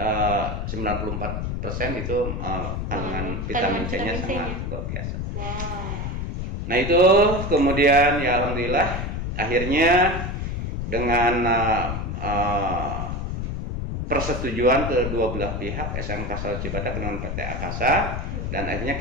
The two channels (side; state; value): left; noise; rumble, 3 dB below the sound